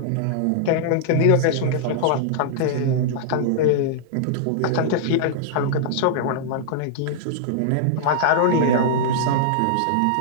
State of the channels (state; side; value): different; both; correlation -0.01